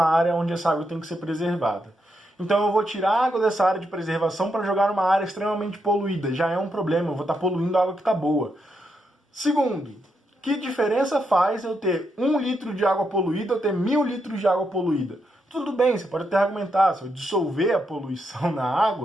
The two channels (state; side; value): normal; both; correlation 0.82